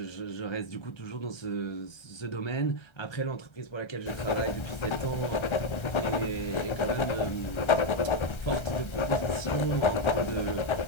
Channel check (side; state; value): right; late; 1.3 ms